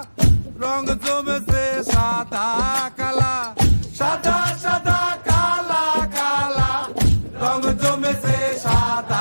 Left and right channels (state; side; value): inverted; both; correlation -1.00